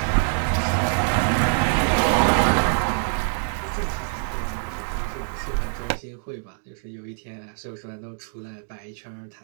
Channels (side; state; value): left; silent; 62 dB below the other